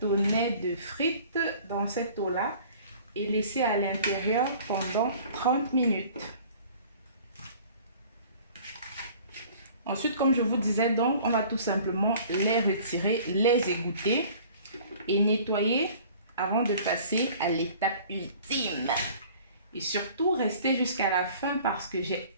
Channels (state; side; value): inverted; both; correlation -0.49